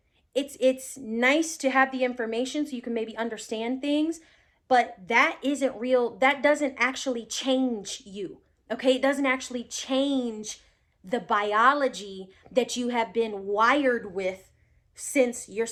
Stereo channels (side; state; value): both; identical; correlation 1.00